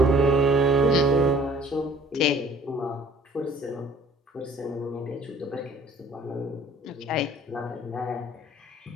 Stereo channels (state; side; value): normal; both; correlation 0.55